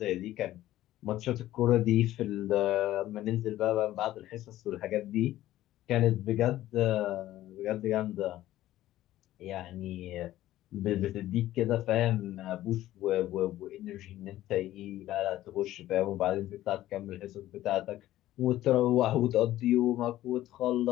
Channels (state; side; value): quieter; right; 14.5 dB